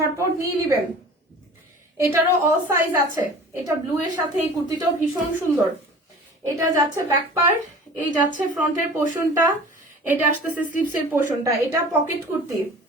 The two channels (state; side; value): normal; both; correlation 0.42